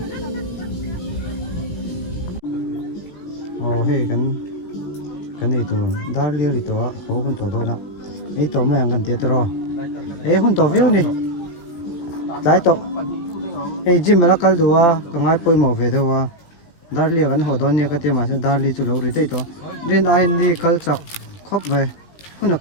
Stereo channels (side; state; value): right; late; 17 ms